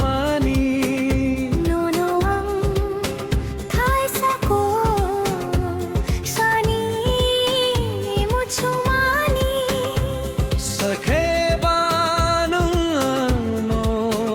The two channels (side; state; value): both; identical; correlation 1.00